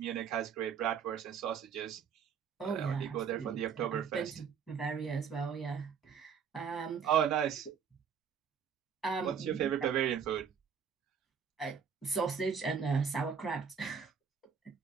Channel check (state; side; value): quieter; left; 7.0 dB